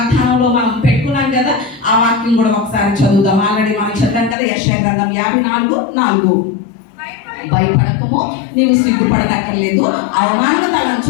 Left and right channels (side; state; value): right; drops out; at 4.4 s